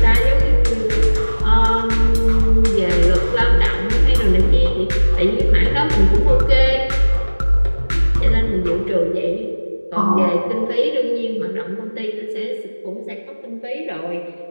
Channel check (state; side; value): inverted; both; correlation -1.00